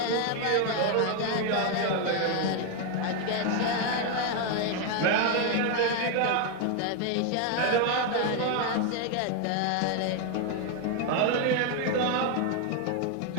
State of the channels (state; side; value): different; both; correlation 0.01